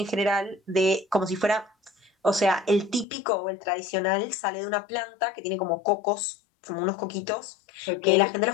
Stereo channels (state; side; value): drops out; right; at 3.1 s